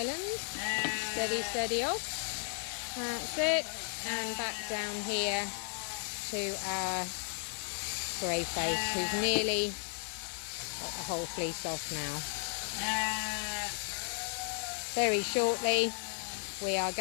Steady, steady off. That's it. And back down here to our Greyface, who's nearly got the whole fleece off now. Very shortly we are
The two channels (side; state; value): right; silent; 55 dB below the other